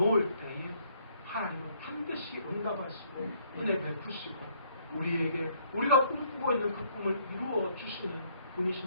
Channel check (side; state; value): both; inverted; correlation -0.66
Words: 때에 하나님은 반드시 응답하시고 은혜 베푸시고 우리에게 우리가 꿈꾸고 있는 그 꿈을 이루어 주시는 분이신